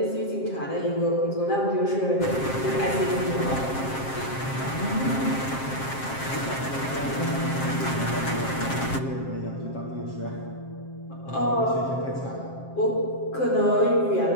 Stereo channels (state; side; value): late; right; 7.5 ms